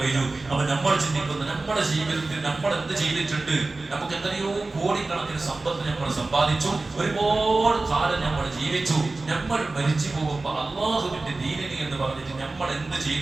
കഴിഞ്ഞു. അപ്പൊ നമ്മൾ ചിന്തിക്കുന്നത്, നമ്മുടെ ജീവിതത്തിൽ നമ്മൾ എന്ത് ചെയ്തിട്ടുണ്ട്, നമുക്ക് എത്രയോ കോടിക്കണക്കിന് സമ്പത്ത് നമ്മൾ സമ്പാദിച്ചു, ഒരുപാട് കാലം നമ്മൾ ജീവിച്ചു, നമ്മൾ മരിച്ചു പോകുമ്പോൾ അല്ലാഹുവിന്റെ ദീനിന് എന്ന് പറഞ്ഞിട്ട് നമ്മൾ എന്ത്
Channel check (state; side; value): quieter; left; 3.3 dB